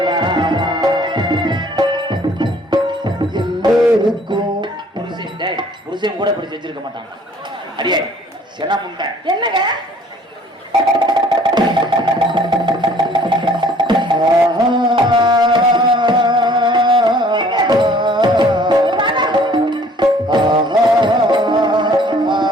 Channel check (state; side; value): normal; both; correlation 0.55